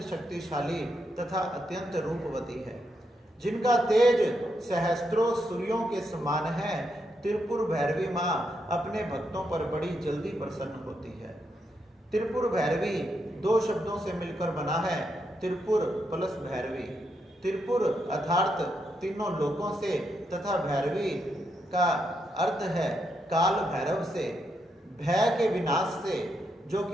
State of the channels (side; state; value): both; normal; correlation 0.81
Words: शक्तिशाली तथा अत्यंत रूपवती है, जिनका तेज सहस्त्रों सूर्यों के समान है। त्रिपुर भैरवी माँ अपने भक्तों पर बड़ी जल्दी प्रसन्न होती है। त्रिपुर भैरवी 2 शब्दों से मिलकर बना है, त्रिपुर प्लस भैरवी। त्रिपुर अर्थात तीनों लोकों से तथा भैरवी का अर्थ है काल भैरव से, भय के विनाश से, जो